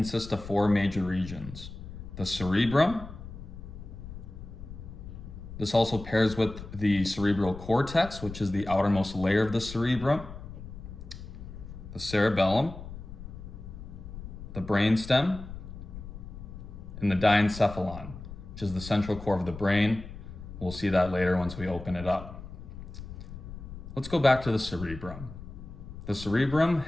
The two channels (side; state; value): left; noise; rumble, 12 dB below the sound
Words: of four major regions. The cerebrum. This also pairs with the cerebral cortex, which is the outermost layer of the cerebrum. The cerebellum, the brainstem, and the diencephalon, which is the central core of the brain. We'll see that later once we open it up. Let's go back to the cerebrum. The cerebrum